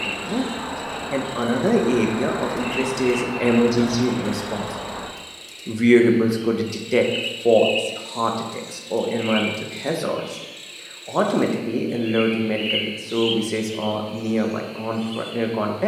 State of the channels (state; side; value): identical; both; correlation 1.00